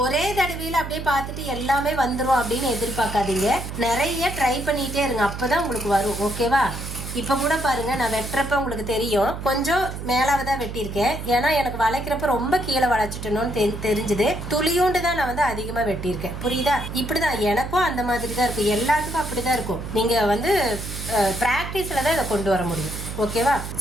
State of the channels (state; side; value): noise; right; hum, 8 dB below the sound